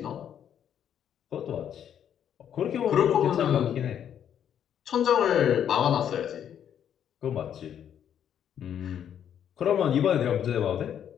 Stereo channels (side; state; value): right; quieter; 9.3 dB